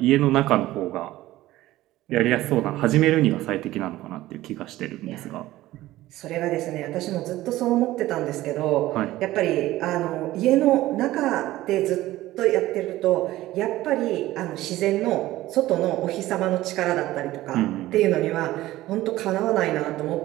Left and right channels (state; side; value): quieter; left; 16.2 dB